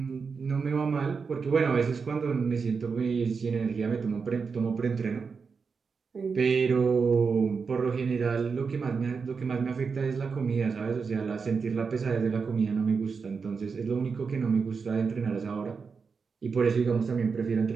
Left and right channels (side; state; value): left; quieter; 5.3 dB